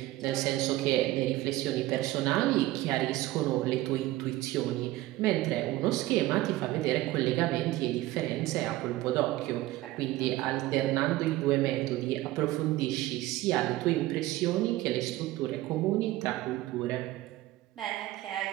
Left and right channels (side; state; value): left; quieter; 17.1 dB